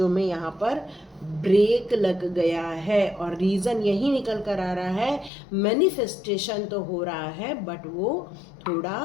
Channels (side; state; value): right; drops out; at 5.3 s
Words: में यहाँ पर ब्रेक लग गया है, और रीज़न यही निकल कर आ रहा है, मैनिफेस्टेशन तो हो रहा है बट वो थोड़ा